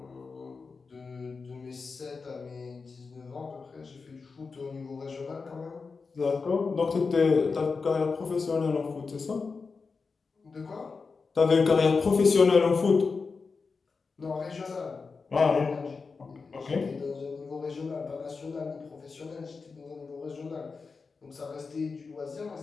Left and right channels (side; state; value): right; quieter; 4.7 dB